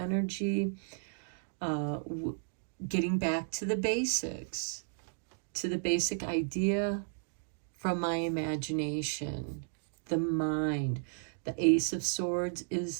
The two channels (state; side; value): silent; left; digital silence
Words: getting back to the basics, to the basic idea from my imagination, the mind. The Ace of Swords